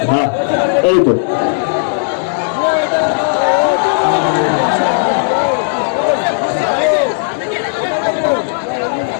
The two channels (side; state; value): right; silent; digital silence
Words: হ্যাঁ, এই তো